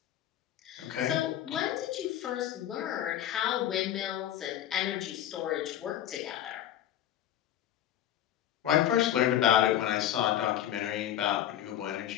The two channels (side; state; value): right; quieter; 11.6 dB